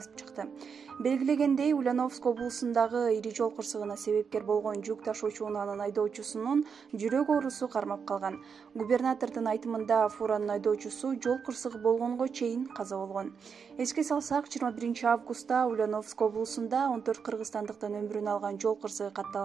чыкты. Белгилегендей, Ульяновск облусундагы ири жол кырсыгына себепкер болгон жүк ташуучу унаанын айдоочусунун жүрөк оорусу кармап калган. Губернатордун айтымында, фуранын айдоочусу жол кырсыгы болгонго чейин каза болгон. Эске салсак, 21 августта Ульяновск облусунда 14 кыргызстандыктын өмүрүн алган жол кырсыгы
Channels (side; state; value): left; quieter; 6.2 dB